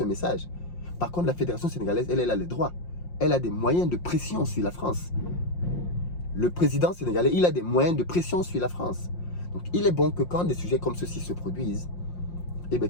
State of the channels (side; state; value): right; late; 5.7 ms